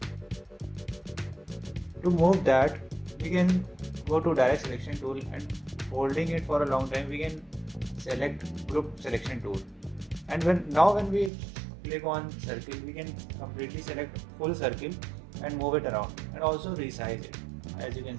To move that, we can go to direct selection tool, and holding it for a long time we can select group selection tool. And when we click on circle, we can completely select full circle and move it around, and also resize it, as you can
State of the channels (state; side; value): drops out; left; at 11.3 s